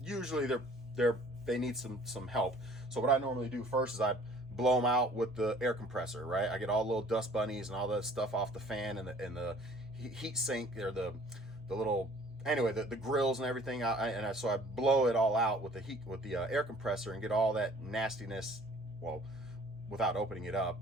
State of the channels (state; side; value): normal; both; correlation 0.53